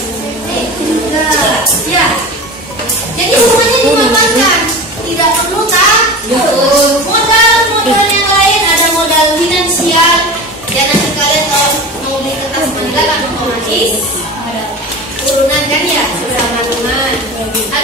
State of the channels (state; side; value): normal; both; correlation 0.32